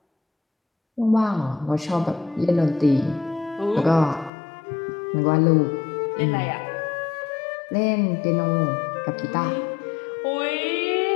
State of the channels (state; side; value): drops out; right; at 4.3 s